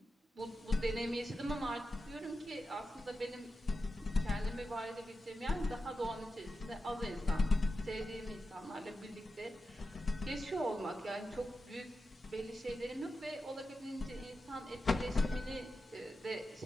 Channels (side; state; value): both; normal; correlation 0.90